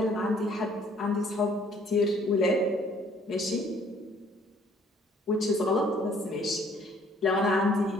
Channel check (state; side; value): normal; both; correlation 0.60